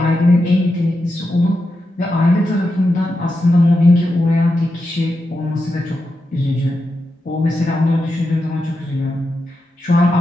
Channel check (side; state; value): both; normal; correlation 0.88